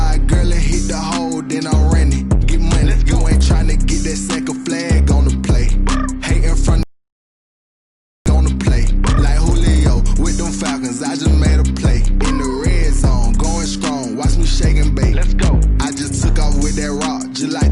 girl, and hit the hole, then I'm running. Get money, you ain't tryna get that second flag on the play. Hating from on the play. Like Julio with them Falcons, I just made a play. In the red zone, going strong, watch me shake and bake. Let's go. I just took off with that rock, just like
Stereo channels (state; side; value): identical; both; correlation 1.00